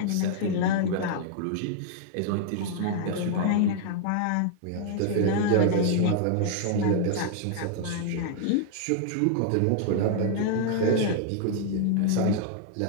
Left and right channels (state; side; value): different; both; correlation 0.00